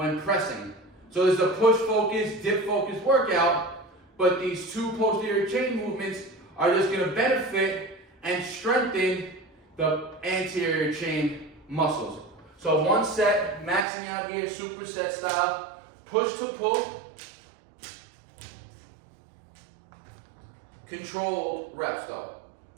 pressing. So there's a push focus, dip focus workout, but these 2 posterior chain movements are just gonna benefit and strengthen the anterior chain muscles. So 1 set, maxing out here, superset style, push to pull, controlled reps though.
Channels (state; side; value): drops out; left; at 13.9 s